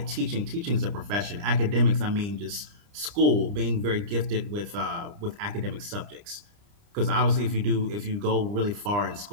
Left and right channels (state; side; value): late; left; 30 ms